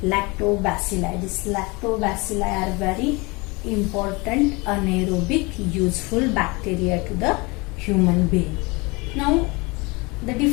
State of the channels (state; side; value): quieter; right; 26.1 dB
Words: lactobacilli. These lactobacilli are very important anaerobic useful bacteria to the human being. Now, the